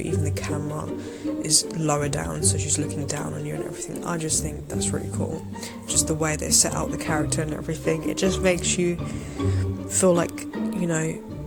Even the camera is lower down, so she's looking down on you and everything. I just think that's really cool. Just the way they set out the character and everything, it just makes you feel like, you know,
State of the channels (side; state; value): both; identical; correlation 1.00